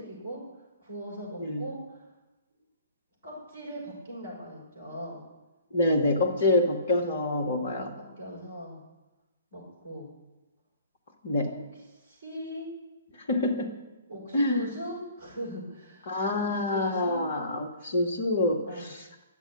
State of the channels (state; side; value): inverted; both; correlation -0.50